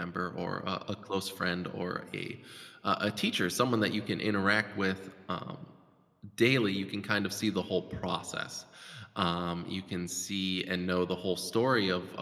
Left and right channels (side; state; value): both; identical; correlation 1.00